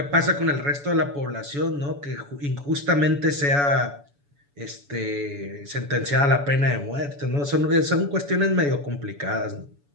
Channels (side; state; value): left; late; 7.0 ms